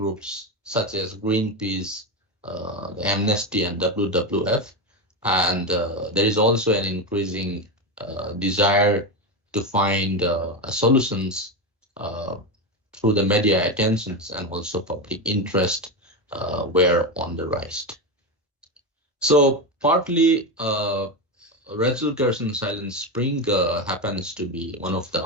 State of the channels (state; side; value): normal; both; correlation 0.14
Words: such as Greenpeace, the Amnesty, and WWF, and there is also an increasing desire to find solutions through the media attentions, and also public interest were on the rise. So partly Rachel Carson Silent Spring happens to be one of the